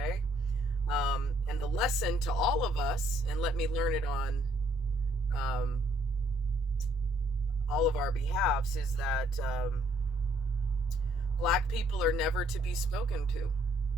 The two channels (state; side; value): normal; both; correlation 0.67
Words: And the lesson to all of us, and let me learn it on all of our behalves, is that Black people are never to be spoken to.